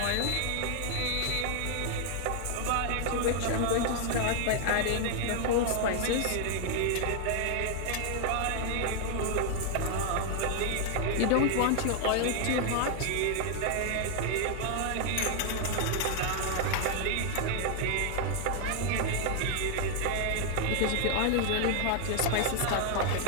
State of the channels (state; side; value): different; both; correlation 0.00